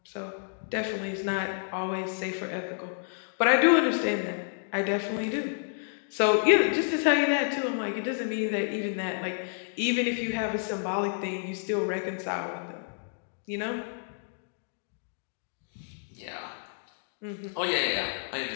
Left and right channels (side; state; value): right; silent; digital silence